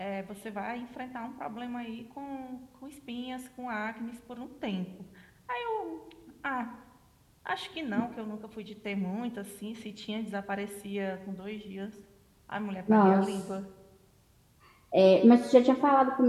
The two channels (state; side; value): identical; both; correlation 1.00